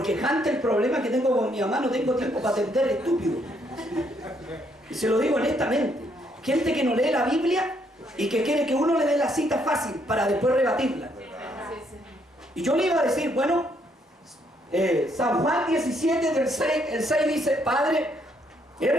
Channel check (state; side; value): normal; both; correlation 0.71